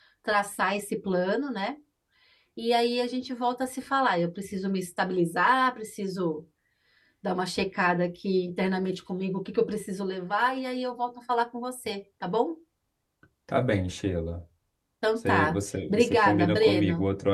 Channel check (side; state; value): both; identical; correlation 1.00